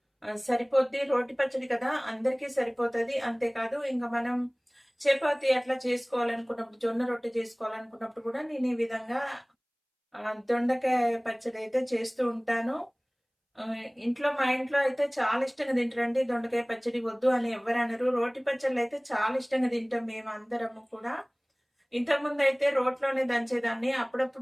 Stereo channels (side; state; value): both; identical; correlation 1.00